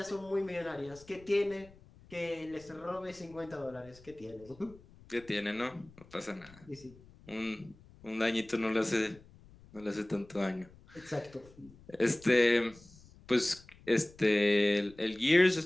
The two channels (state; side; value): noise; left; rumble, 24 dB below the sound